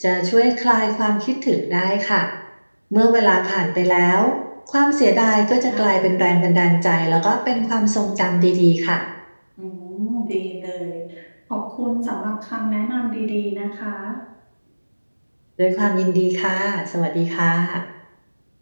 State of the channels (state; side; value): inverted; both; correlation -1.00